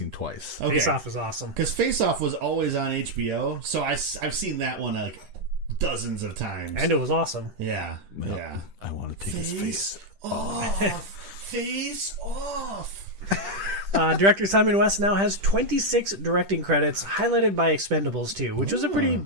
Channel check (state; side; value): late; left; 10 ms